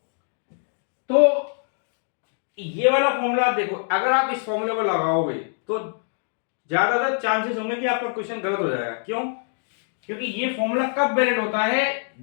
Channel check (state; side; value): silent; right; digital silence